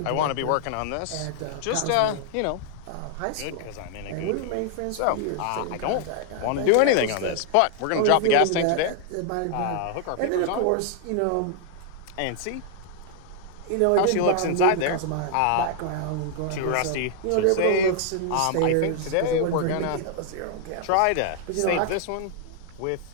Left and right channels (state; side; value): different; both; correlation 0.00